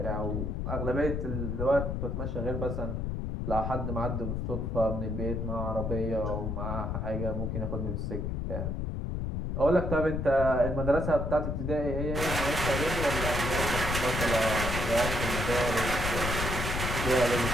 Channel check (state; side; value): noise; left; rumble, 2 dB below the sound